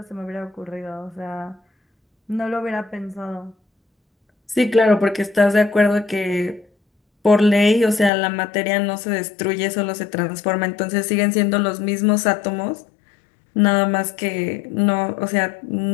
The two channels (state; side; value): drops out; right; at 8.1 s